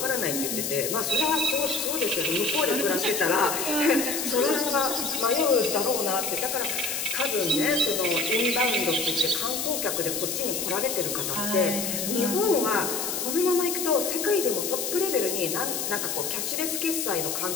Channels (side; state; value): left; noise; hiss, 2 dB below the sound